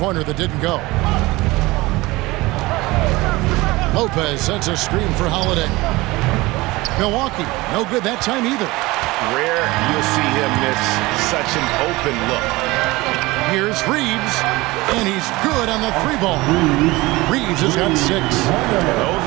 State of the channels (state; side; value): quieter; left; 21.0 dB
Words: that didn't go. Lopez sets a screen for Holiday. Milwaukee, no good that time either. Rare you'll see him miss such an open look. Here's Reeves, and he's good on the 3-ball. Reeves has got 6. Those